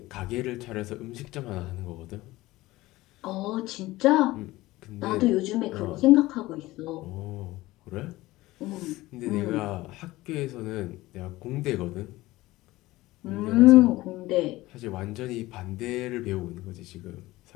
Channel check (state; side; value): quieter; right; 18.4 dB